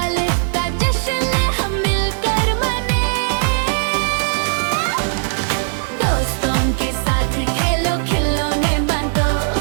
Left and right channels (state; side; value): silent; left; digital silence